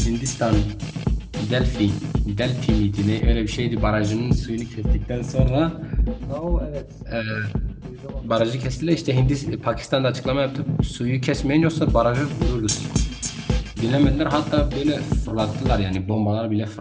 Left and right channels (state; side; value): identical; both; correlation 1.00